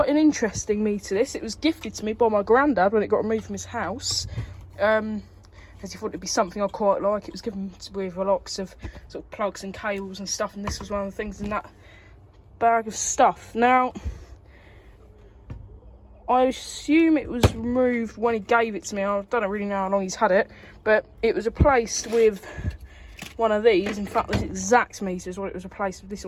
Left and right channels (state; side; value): identical; both; correlation 1.00